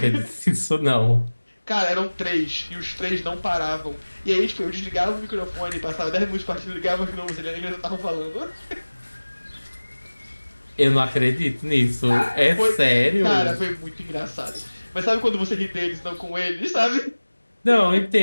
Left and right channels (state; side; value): inverted; both; correlation -1.00